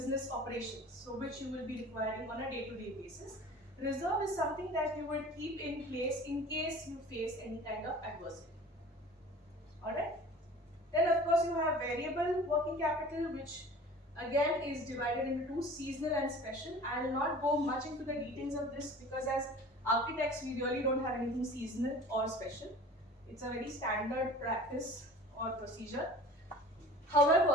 operations, so which you will be requiring on a day-to-day basis. Reserve is something that you will keep in place in case you face any kind of adversity. Alright? Then of course you have variable working capital, which again is divided into two, seasonal and special. I will not go much into the details of this because as architects we really don't have anything seasonal or special. It's a very standard practice or procedure.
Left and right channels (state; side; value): normal; both; correlation 0.43